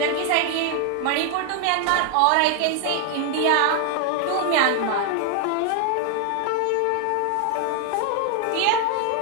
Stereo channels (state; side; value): different; both; correlation 0.00